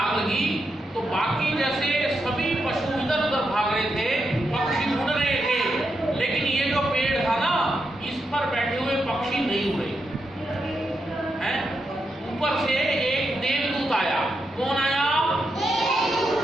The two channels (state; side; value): normal; both; correlation 0.84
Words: लगी तो बाकी जैसे सभी पशु इधर उधर भाग रहे थे, पक्षी उड़ रहे थे, लेकिन ये जो पेड़ था ना, इस पर बैठे हुए पक्षी नहीं उड़े हैं। ऊपर से एक देवदूत आया। कौन आया?